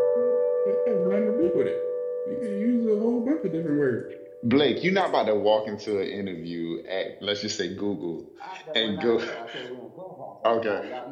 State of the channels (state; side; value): identical; both; correlation 1.00